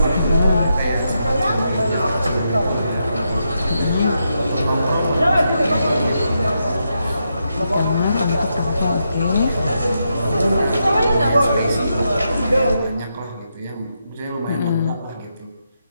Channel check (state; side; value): inverted; both; correlation -0.83